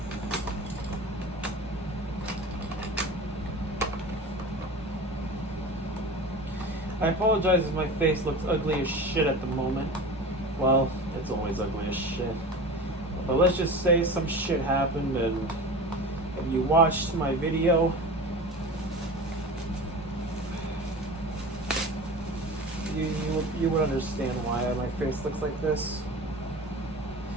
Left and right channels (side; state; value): both; normal; correlation 0.33